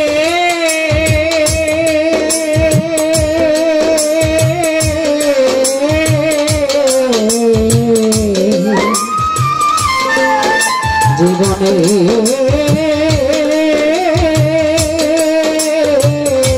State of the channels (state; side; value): identical; both; correlation 1.00